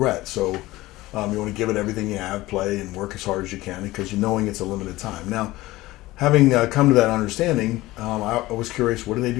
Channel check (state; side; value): quieter; right; 18.3 dB